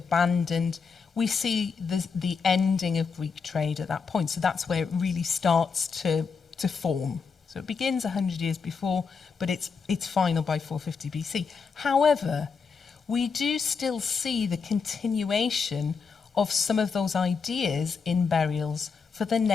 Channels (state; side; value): quieter; right; 5.4 dB